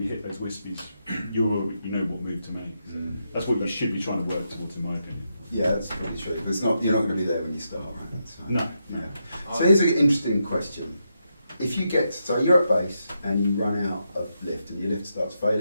you hit those wispies, you know what move to make. That's what you should be trying to work towards, in my opinion. Yeah, that's probably true. But you're not going to be there when you start, right? So, No. Yeah. So here's an interesting question. If you so you're at base and you run out of lift and your lift starts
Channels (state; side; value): inverted; both; correlation -0.83